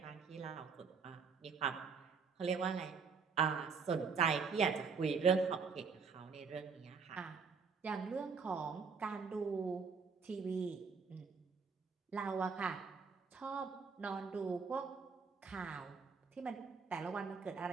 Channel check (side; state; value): left; quieter; 5.5 dB